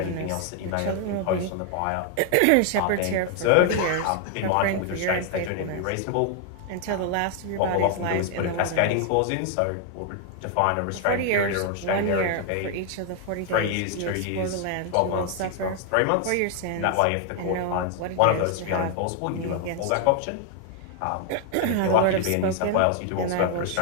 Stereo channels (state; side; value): different; both; correlation 0.00